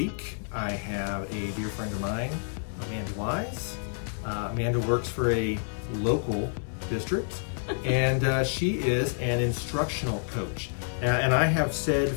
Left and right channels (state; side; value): silent; right; digital silence